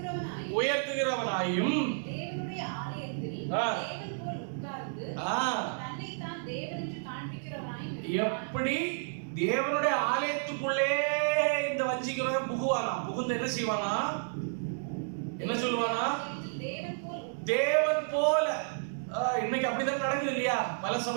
உயர்த்துகிறவனாயும் எப்படி தேவனுடைய ஆலயத்துக்குள்ளே இந்த வஞ்சிக்கிறவன் புகுவானா? புகுந்து என்ன செய்வானா? என்ன சொல்லுவானா? தேவன் போல. இன்னைக்கு அப்படிதான் நடக்குது இல்லையா? பல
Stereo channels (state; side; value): silent; left; digital silence